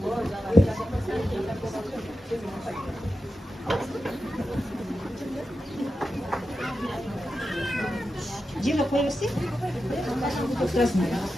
Жеңе қой берсе?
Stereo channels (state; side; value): normal; both; correlation 0.90